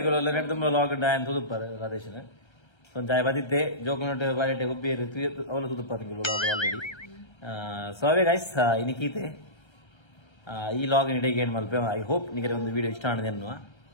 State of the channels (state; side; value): late; right; 1.3 ms